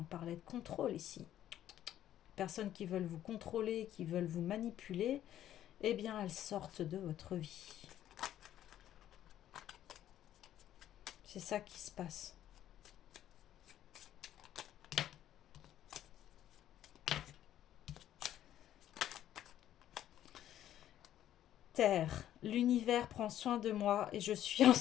parlait de contrôle ici. Personnes qui veulent vous contrôler, qui veulent vous manipuler, eh bien elles sortent de votre vie. C'est ça qui se passe. Terre, l'univers prend soin de moi et je suis en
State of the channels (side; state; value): right; quieter; 11.8 dB